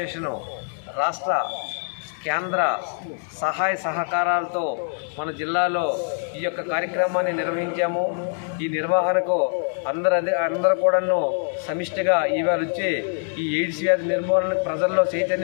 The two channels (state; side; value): silent; right; digital silence